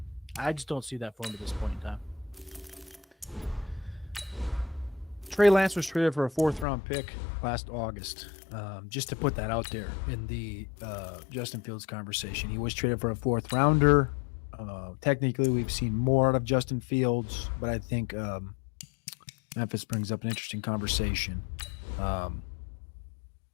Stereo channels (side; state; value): right; drops out; at 6.7 s